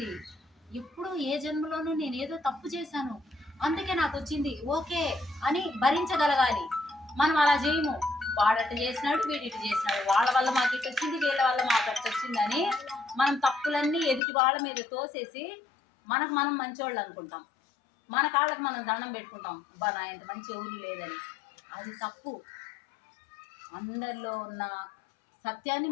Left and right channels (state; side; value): drops out; right; at 14.2 s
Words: ఎప్పుడు ఏ జన్మలోనూ నేను ఏదో తప్పు చేశాను అందుకే నాకు వచ్చింది ఓకే అని భరించగలగాలి. మనం అలా చేయము. వాడట చేసినాడు, వీడిటి చేసినాడు, వాళ్ళ వల్ల మాకు ఇటు వచ్చింది, వీళ్ళ వల్ల మాకు అటు వచ్చిందని మనం తప్పులన్నీ ఎదుటి వాళ్ళ మీద తోసేసి మనకు మనం మంచివాళ్ళు అనుకుంటాం. మన కాళ్ళకు మనం దండం పెట్టుకుంటాం, అబ్బా నా ఎంత మంచి ఊరు లేదని. అది తప్పు. అందరిలో ఉన్న సత్యాన్ని